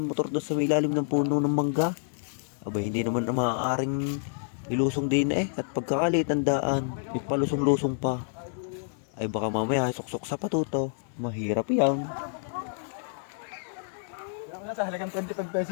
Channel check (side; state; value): right; silent; digital silence